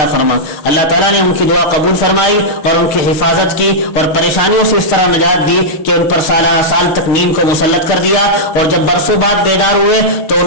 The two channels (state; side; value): late; right; 6.6 ms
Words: فرما۔ اللہ تعالیٰ نے ان کی دعا قبول فرمائی اور ان کی حفاظت کی اور پریشانیوں سے اس طرح نجات دی کہ ان پر سال تک نیند کو مسلط کر دیا، اور جب برسوں بعد بیدار ہوئے تو